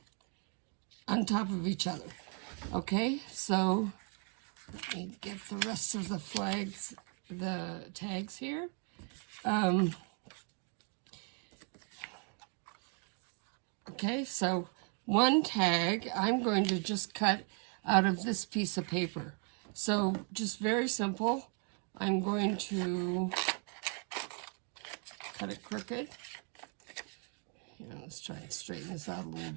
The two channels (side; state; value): left; quieter; 37.4 dB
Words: top of each other. Okay, so let me get the rest of the flags, the tags here. Okay, so one tag I'm going to just cut out of this piece of paper. So just very simple. I'm going to cut it crooked. Let's try and straighten this out a little